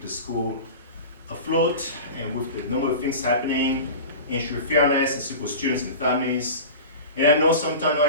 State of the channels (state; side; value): inverted; both; correlation -0.33